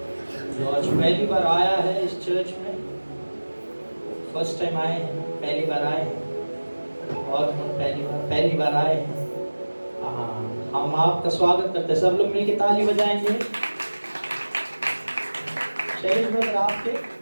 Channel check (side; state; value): both; inverted; correlation -1.00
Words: जो आज पहली बार आया है इस चर्च में, फर्स्ट टाइम आए हैं, पहली बार आए हैं, और हम पहली बार आए हैं। हाँ, हम आपका स्वागत करते हैं। सब लोग मिलके ताली बजाएंगे। शैलेश ब्रदर आपके